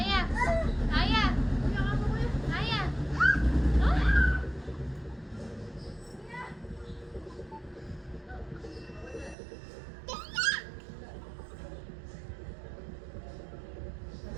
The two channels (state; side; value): drops out; left; at 9.3 s